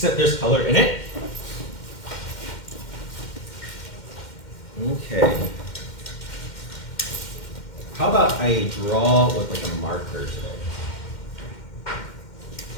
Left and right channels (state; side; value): late; right; 2.1 ms